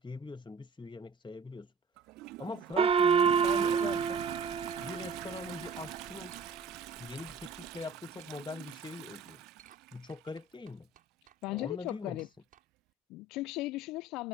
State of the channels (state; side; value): quieter; left; 4.0 dB